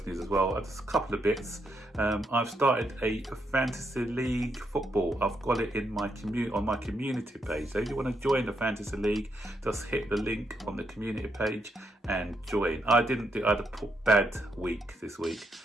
news as well, just a couple of bits. I've started a fantasy league football. I've got it in my on my community page. So if you want to join the fantasy league, just hit the link on the community page and join. I had a bad week this week.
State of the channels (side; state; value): both; normal; correlation 0.79